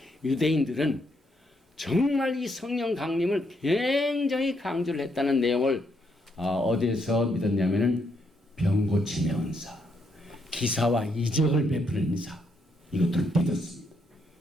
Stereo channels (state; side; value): normal; both; correlation 0.76